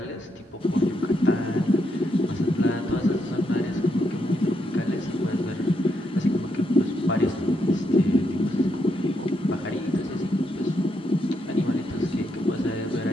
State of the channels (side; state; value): both; normal; correlation 0.79